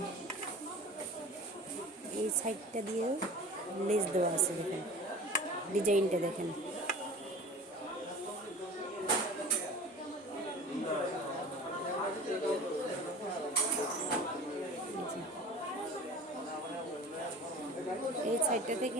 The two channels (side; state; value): both; normal; correlation 0.39